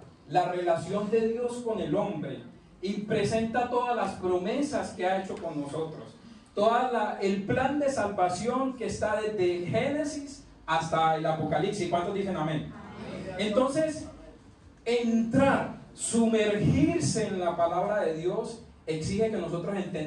la relación de Dios con el hombre, y presenta todas las promesas que ha hecho con nosotros. El plan de salvación que está desde Génesis hasta el Apocalipsis. ¿Cuántos dicen amén? Entonces, sumergirse en la palabra de Dios exige que nosotros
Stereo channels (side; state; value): both; identical; correlation 1.00